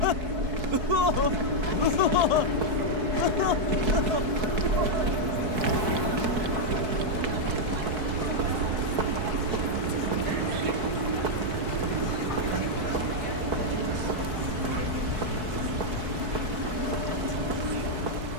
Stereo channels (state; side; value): late; left; 4.6 ms